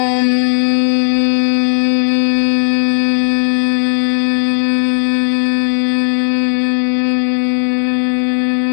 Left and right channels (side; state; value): right; silent; digital silence